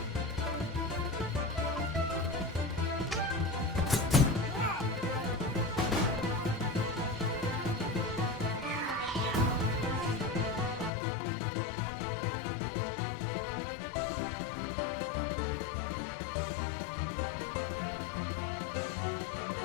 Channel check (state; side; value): drops out; right; at 10.9 s